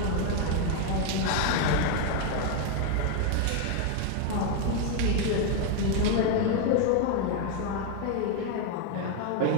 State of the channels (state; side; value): different; both; correlation 0.01